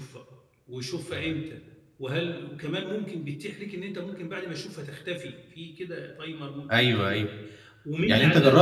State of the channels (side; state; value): both; identical; correlation 1.00